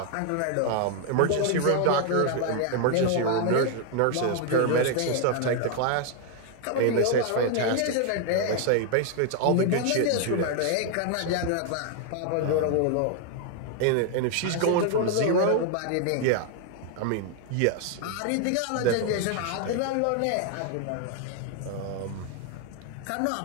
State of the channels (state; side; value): different; both; correlation 0.00